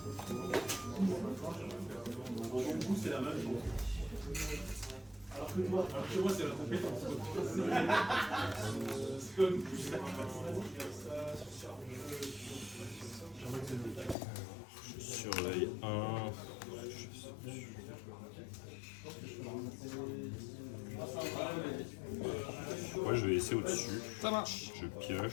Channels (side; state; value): right; drops out; at 14.2 s